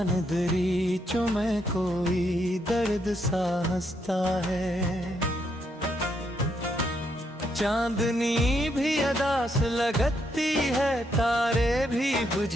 दरीचों में कोई दर्द सा हंसता है। चांदनी भी अदास लगती है, तारे भी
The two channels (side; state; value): both; normal; correlation 0.77